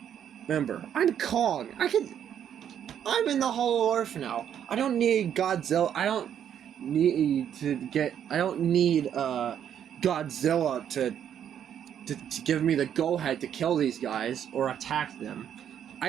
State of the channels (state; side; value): quieter; left; 9.3 dB